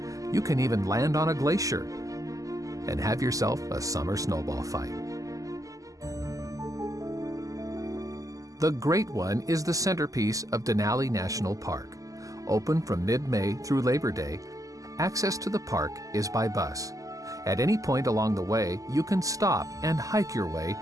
You can even land on a glacier and have yourself a summer snowball fight. The Great One is the centerpiece of Denali National Park. Open from mid-May through Labor Day, access to the park is by bus. At any point along the way, you can stop and hike your way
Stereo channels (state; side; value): late; left; 0.17 ms